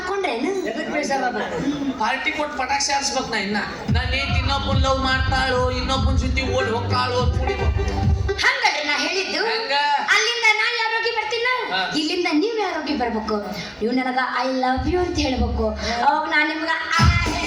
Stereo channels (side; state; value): both; identical; correlation 1.00